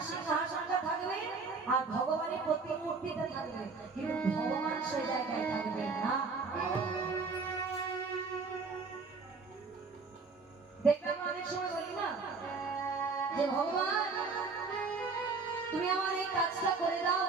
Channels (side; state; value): left; quieter; 4.4 dB